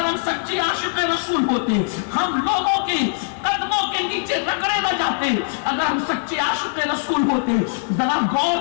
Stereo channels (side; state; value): right; silent; 65 dB below the other